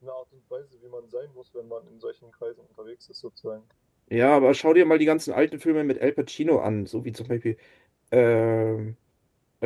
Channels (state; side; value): identical; both; correlation 1.00